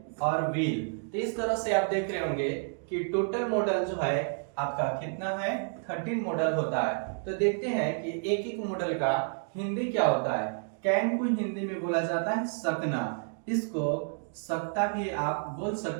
और विल। तो इस तरह से आप देख रहे होंगे कि टोटल मॉडल जो है आपका कितना है, 13 मॉडल होता है। तो देखते हैं कि एक एक मॉडल का हिंदी क्या होता है। कैन को हिंदी में बोला जाता है सकना, इसको सकता भी आप बोल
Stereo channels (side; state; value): left; silent; 58 dB below the other